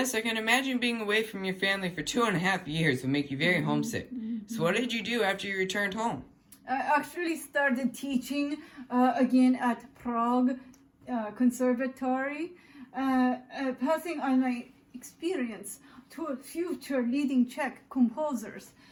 I can imagine being away from your family for 2.5 years would make you very homesick. So what did you do after you returned home? I actually started teaching again at Prague Conservatory, passing on my experience two future leading Czech composers.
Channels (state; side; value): identical; both; correlation 1.00